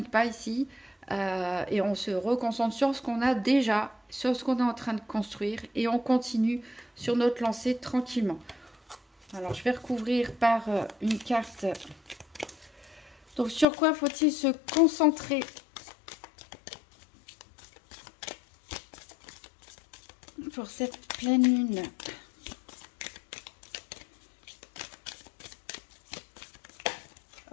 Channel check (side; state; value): right; drops out; at 13.7 s